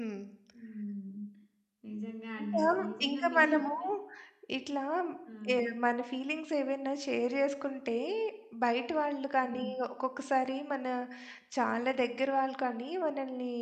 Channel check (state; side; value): identical; both; correlation 1.00